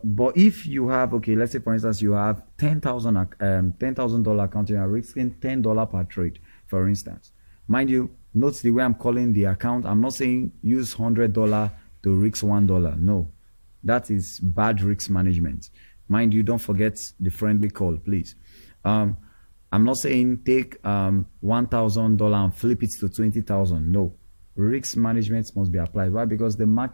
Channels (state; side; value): inverted; both; correlation -1.00